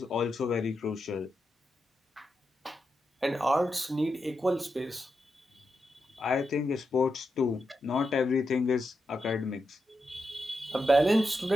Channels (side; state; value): both; normal; correlation 0.87